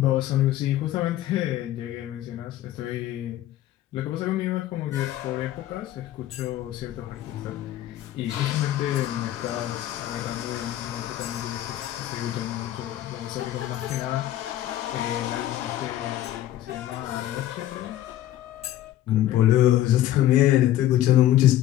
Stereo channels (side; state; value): right; quieter; 13.3 dB